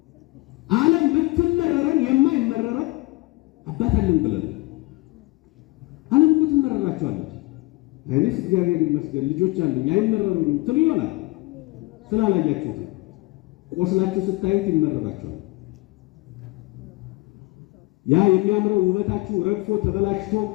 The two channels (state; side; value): quieter; right; 22.9 dB